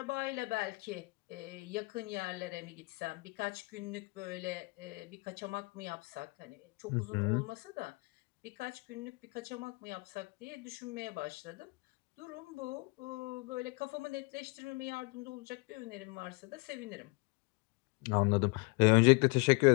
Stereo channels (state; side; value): quieter; right; 28.8 dB